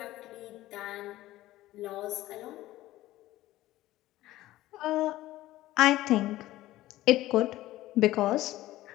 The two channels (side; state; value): right; quieter; 16.0 dB